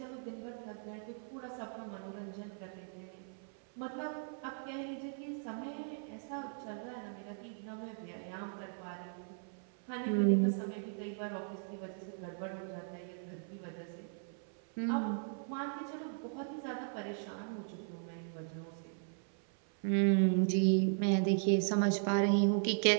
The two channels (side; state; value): left; silent; 53 dB below the other